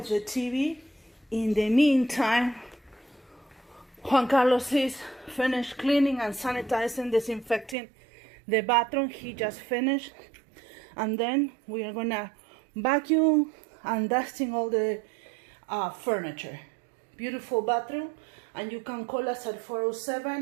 the TV. In the meantime, Juan Carlos is finished cleaning and sanitizing, disinfecting the bathroom. He just finished. And then we are gonna vacuum and dusting all the furniture. Beautiful bathroom. And you can call us at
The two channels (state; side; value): drops out; left; at 7.8 s